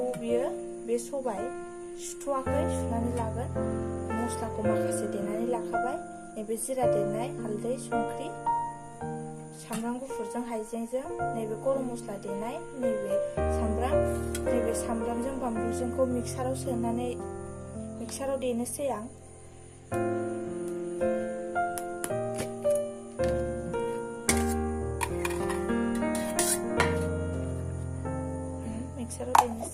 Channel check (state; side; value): identical; both; correlation 1.00